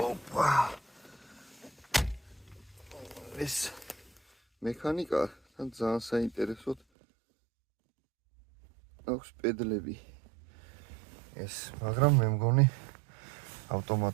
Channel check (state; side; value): drops out; left; at 6.8 s